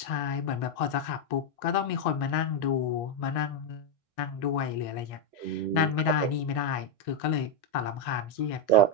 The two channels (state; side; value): late; right; 1.6 ms